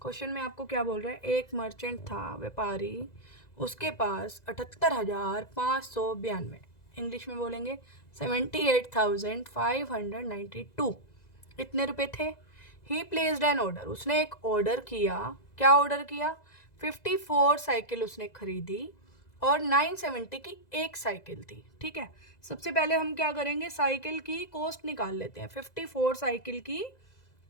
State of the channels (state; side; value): late; right; 2.0 ms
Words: Question में आपको क्या बोल रहा है, एक मर्चेंट था, व्यापारी, उसके पास 78,592, इंग्लिश में बोलेंगे 78,592, इतने रुपए थे। ही प्लेस्ड एन ऑर्डर, उसने एक ऑर्डर किया। क्या ऑर्डर किया? 54 साइकिल उसने खरीदी और 970 की एक साइकिल थी। ठीक है, सबसे पहले हम क्या करेंगे, साइकिल की कॉस्ट निकाल लेते हैं। 54 साइकिल की